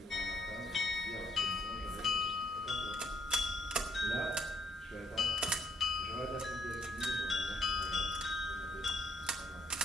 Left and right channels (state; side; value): normal; both; correlation 0.70